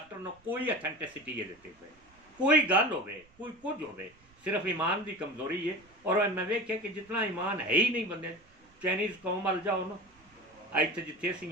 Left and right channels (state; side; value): noise; right; rumble, 30 dB below the sound